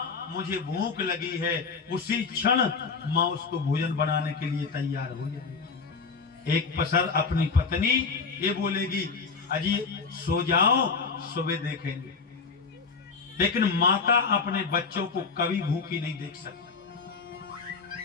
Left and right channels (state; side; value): quieter; right; 4.9 dB